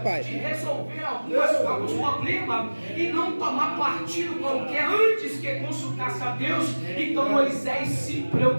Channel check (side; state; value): both; inverted; correlation -1.00